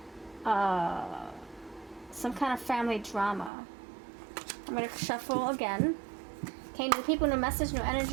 some kind of family drama. I'm going to shuffle again. Okay, new people, new message, new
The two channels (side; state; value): left; drops out; at 3.5 s